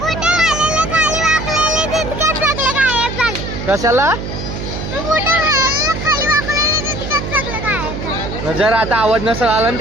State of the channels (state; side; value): noise; right; hum, 6 dB below the sound